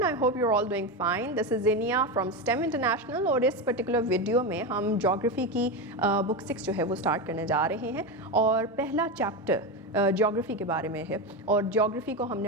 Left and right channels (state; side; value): normal; both; correlation 0.15